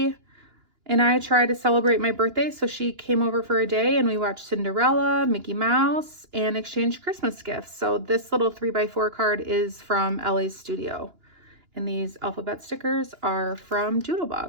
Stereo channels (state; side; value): late; left; 2.9 ms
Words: and I try to celebrate my birthday. So she came over for a day and we watched Cinderella, Mickey Mouse, and exchanged Christmas gifts. So this little 3x4 card is from Elle's studio. And these alphabet stickers are from